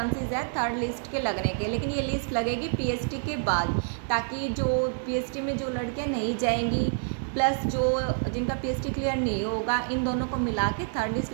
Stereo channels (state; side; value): silent; left; 60 dB below the other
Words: है थर्ड लिस्ट के लगने के, लेकिन ये लिस्ट लगेगी पीएसटी के बाद, ताकि जो पीएसटी में जो लड़कियां नहीं जाएंगी प्लस जो जिनका पीएसटी क्लियर नहीं होगा, इन दोनों को मिला के थर्ड लिस्ट